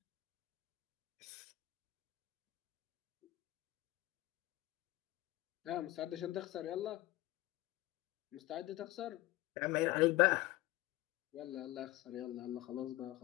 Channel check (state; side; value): quieter; right; 17.9 dB